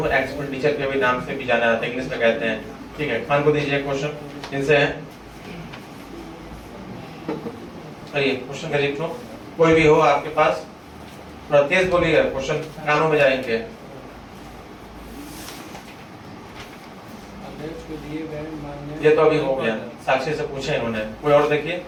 एक्सपेंडिचर के भी नाम से भी जाना जाता है, इंग्लिश में कहते हैं, ठीक है। खान को दीजिए क्वेश्चन, इनसे है करिए क्वेश्चन करिए, तो कोई भी हो आपके पास, थोड़ा तेज बोलिएगा, क्वेश्चन कानों में जाएंगे। अध्यक्ष को दिए गए मानदेय, ये तो अभी हो गया, साक्षी से पूछे इन्होंने, कोई और देखिए,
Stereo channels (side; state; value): both; identical; correlation 1.00